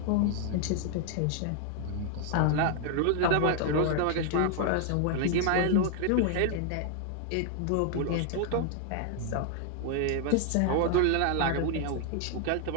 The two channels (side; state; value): both; different; correlation 0.00